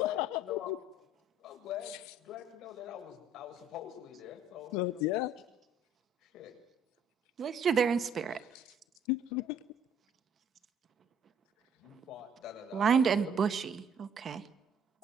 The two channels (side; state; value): both; normal; correlation 0.59